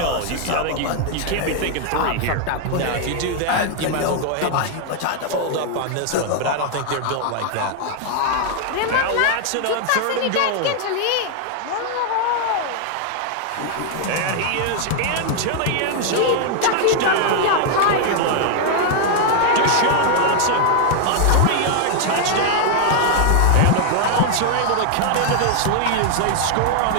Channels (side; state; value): both; different; correlation 0.00